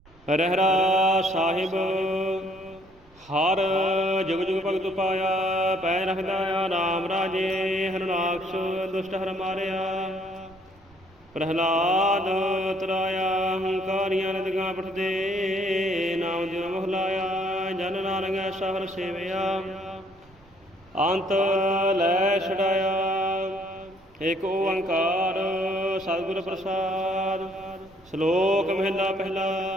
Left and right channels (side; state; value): right; noise; rumble, 27 dB below the sound